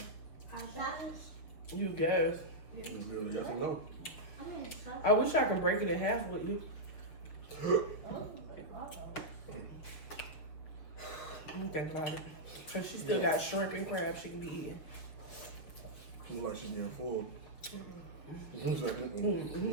You guys. It's really yes or no. I wish I could break it in half with you. Let me think about it. Because she still got shrimp and crab she can be eating. Feel like she's getting full.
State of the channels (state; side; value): late; right; 6.6 ms